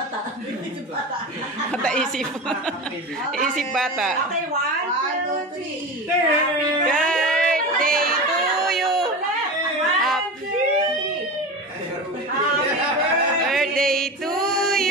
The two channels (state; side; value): normal; both; correlation 0.27